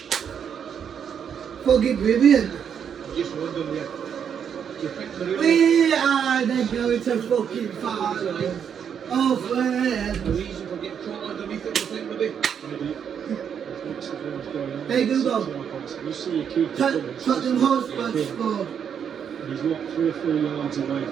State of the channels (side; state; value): left; quieter; 7.9 dB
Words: Fucking brilliant. Just wondering, do you think they're really... We are then going to fucking finals. Oh, man. The reason for getting caught underneath it, you think, maybe? Hey, Google. You see a keeper Tottenham Hotspur scored. and he's what, 3 or 4 yards away